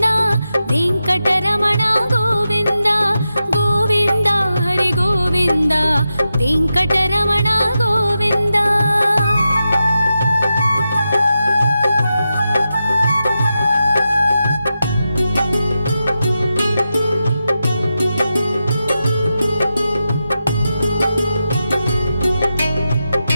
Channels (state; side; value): inverted; both; correlation -0.89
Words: वेङ्कटरमण गोविन्द गोविन्द हरि गोविन्द वेङ्कटरमण गोविन्द।